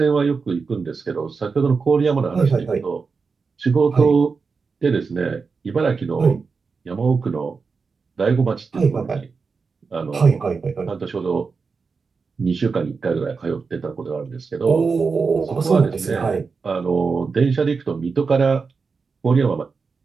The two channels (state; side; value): quieter; left; 4.9 dB